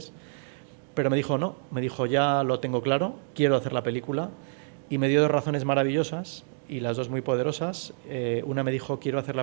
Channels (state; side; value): silent; left; digital silence